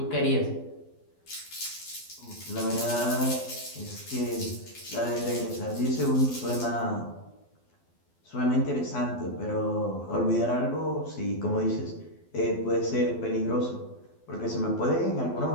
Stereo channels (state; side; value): late; right; 12 ms